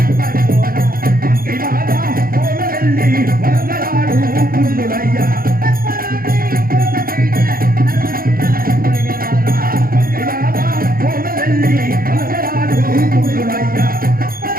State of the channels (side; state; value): left; late; 0.42 ms